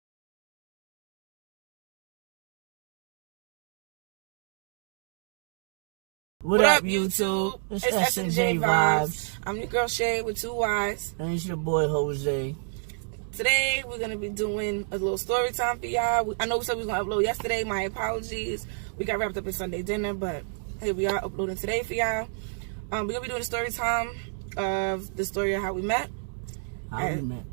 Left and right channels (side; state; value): left; silent; digital silence